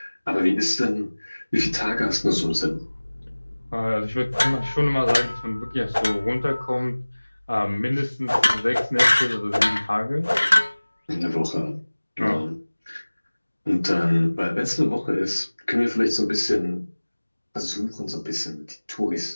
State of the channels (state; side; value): inverted; both; correlation -1.00